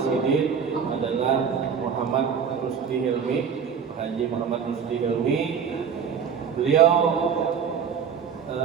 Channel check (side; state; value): left; quieter; 7.0 dB